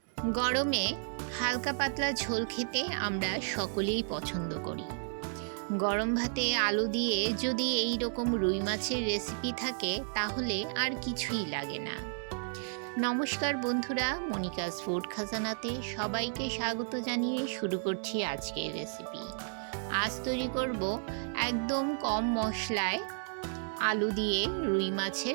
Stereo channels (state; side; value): silent; left; digital silence